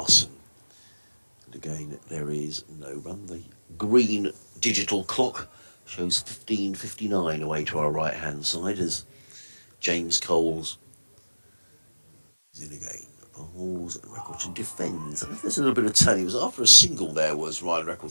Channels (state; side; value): inverted; both; correlation -1.00